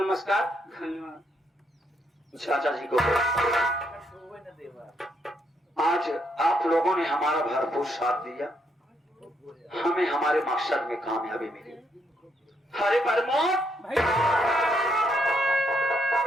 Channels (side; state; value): both; normal; correlation 0.76